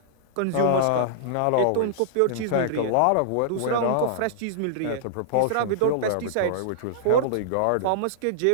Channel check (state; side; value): different; both; correlation -0.01